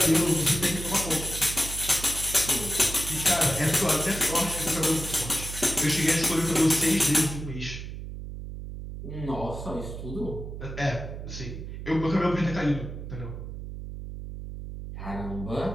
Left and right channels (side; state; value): right; noise; hum, 9 dB below the sound